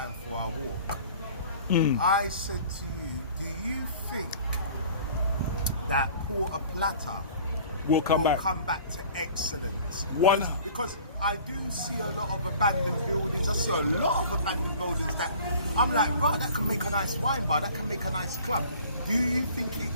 for our walk. I said to you, do you think that Puerto Plata will come back to excellence? One. Because I do see a lot of abandoned buildings. I see a lot of abandoned buildings that I'm like, right, that can make a nice wine bar, that can make a nice club. Do you think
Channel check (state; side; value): inverted; both; correlation -0.48